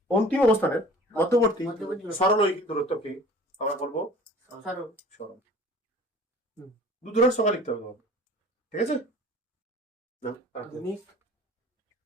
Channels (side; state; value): both; normal; correlation 0.46